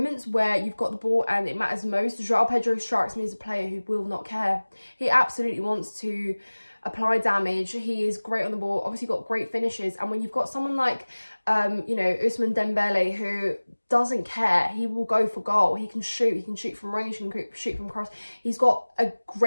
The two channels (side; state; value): both; inverted; correlation -1.00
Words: where you've got the ball and it matters most, Joao Pedro strikes me as a player who will not care. He absolutely wants to apply damage. He is great on the ball, obviously got great finishes. And when you've got someone like, you know, Ousmane Dembele, who doesn't care, he will go for goal. He can shoot from range, he can shoot from cross. He's got a